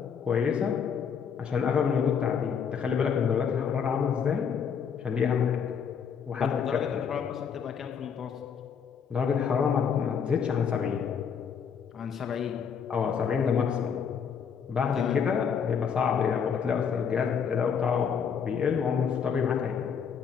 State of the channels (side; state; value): right; quieter; 7.0 dB